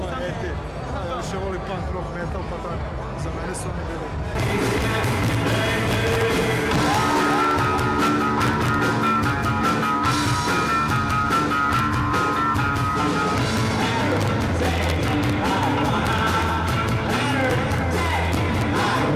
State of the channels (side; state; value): both; identical; correlation 1.00